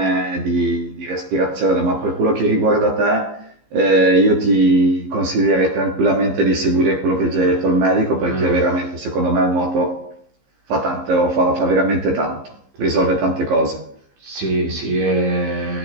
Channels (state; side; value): late; left; 15 ms